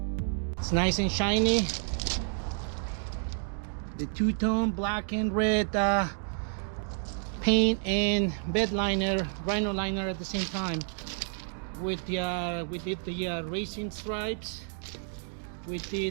It's nice and shiny. The two-tone black and red paint and bed liner, rhino liner at the same time. We did the racing stripes. We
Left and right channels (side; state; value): left; silent; 58 dB below the other